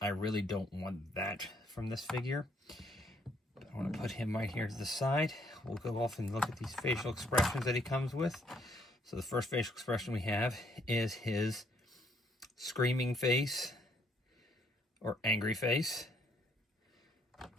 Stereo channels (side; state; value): both; normal; correlation 0.69